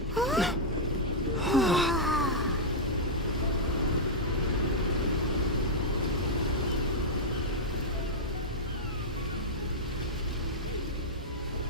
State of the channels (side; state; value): both; normal; correlation -0.07